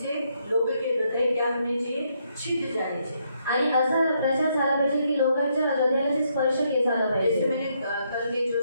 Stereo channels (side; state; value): both; inverted; correlation -0.75